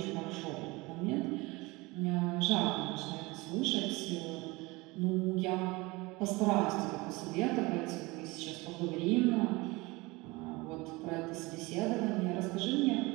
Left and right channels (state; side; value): quieter; left; 23.3 dB